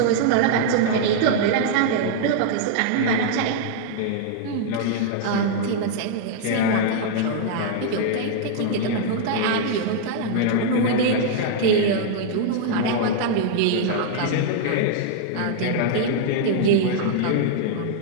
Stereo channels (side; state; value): both; different; correlation -0.01